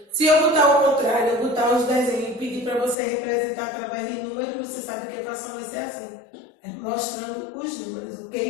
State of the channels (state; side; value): drops out; right; at 3.0 s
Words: Se eu botar ao contrário, eu botar os desenhos e pedir para você representar através de números, você sabe que a fração vai ser assim. É mostrando os números,